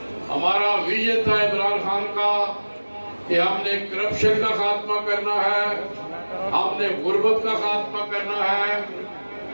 ہمارا ویژن تھا عمران خان کا کہ ہم نے کرپشن کا خاتمہ کرنا ہے، ہم نے غربت کا خاتمہ کرنا ہے،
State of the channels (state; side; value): inverted; both; correlation -1.00